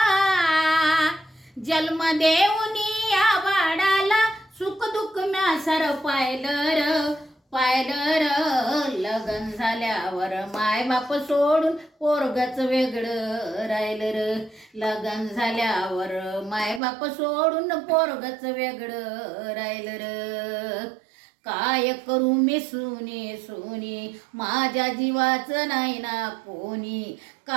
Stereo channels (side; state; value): left; drops out; at 16.8 s